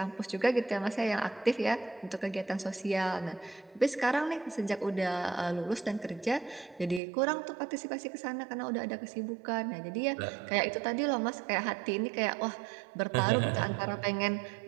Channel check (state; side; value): drops out; left; at 7.0 s